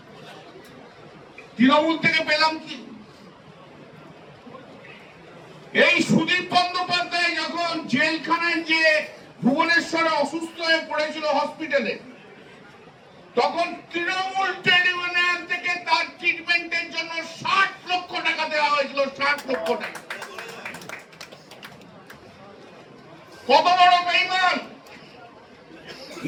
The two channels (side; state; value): both; identical; correlation 1.00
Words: তৃণমূল থেকে পেলাম কি? এই সুদীপ বন্দ্যোপাধ্যায় যখন জেলখানায় যে ভুবনেশ্বরে অসুস্থ হয়ে পড়েছিল হসপিটালে, তখন তৃণমূল ট্রেড ইউনিয়ন থেকে তার ট্রিটমেন্টের জন্য 60 লক্ষ টাকা দেওয়া হয়েছিল। 60 লক্ষ টাকা। কত বড় বেঈমান!